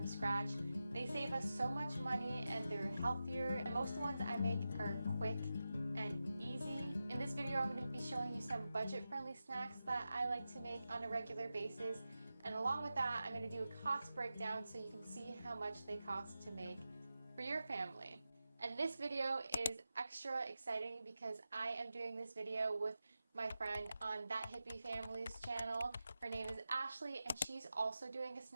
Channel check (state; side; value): inverted; both; correlation -0.92